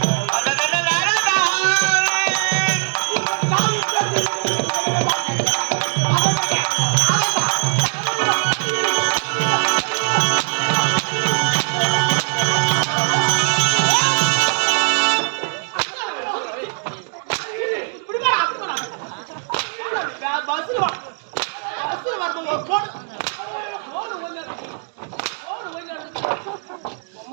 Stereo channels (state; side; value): silent; left; digital silence